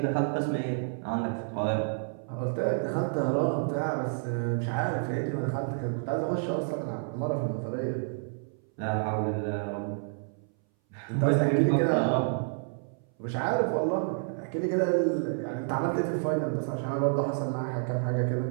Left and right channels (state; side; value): silent; left; 58 dB below the other